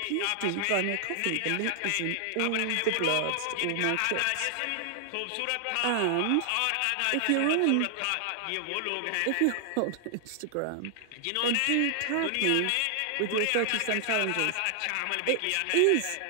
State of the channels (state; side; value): different; both; correlation 0.00